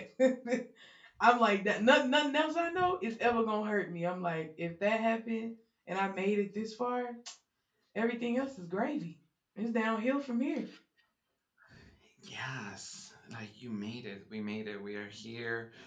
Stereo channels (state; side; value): identical; both; correlation 1.00